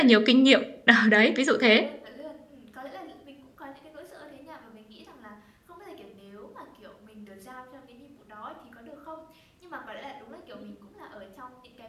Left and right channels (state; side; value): identical; both; correlation 1.00